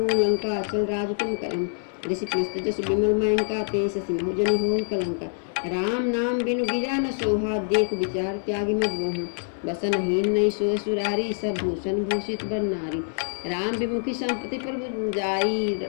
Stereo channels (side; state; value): right; silent; 61 dB below the other